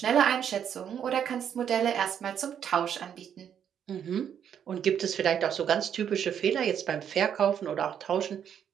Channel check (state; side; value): quieter; left; 8.7 dB